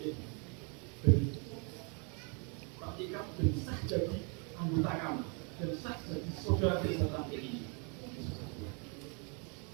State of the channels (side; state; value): left; quieter; 36.2 dB